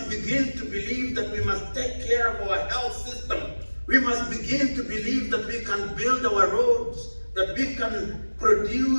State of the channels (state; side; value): inverted; both; correlation -1.00